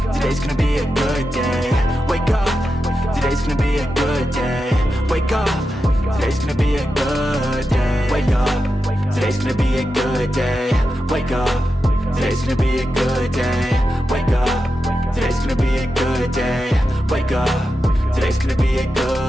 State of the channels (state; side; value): normal; both; correlation 0.89